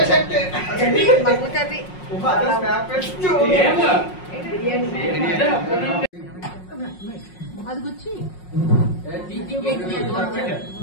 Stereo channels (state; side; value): late; right; 5.5 ms